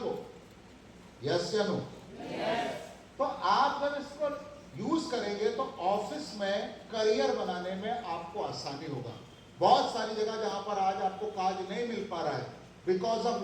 यस या नो? तो आप जब इसको यूज करेंगे तो ऑफिस में करियर बनाने में आपको आसानी होगा। बहुत सारी जगह जहां पर आज आपको काज नहीं मिल पा रहा है because of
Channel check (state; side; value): identical; both; correlation 1.00